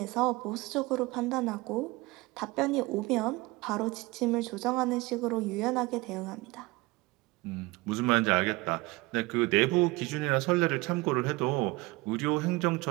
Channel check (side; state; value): left; quieter; 22.4 dB